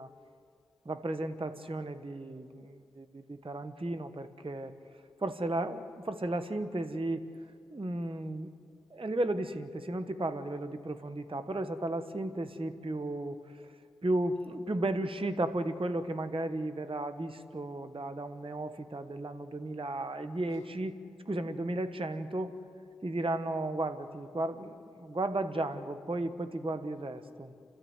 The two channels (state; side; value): normal; both; correlation 0.82